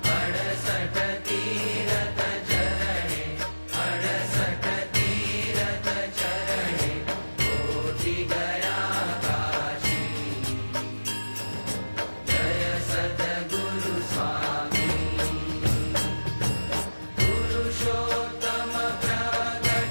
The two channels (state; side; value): inverted; both; correlation -1.00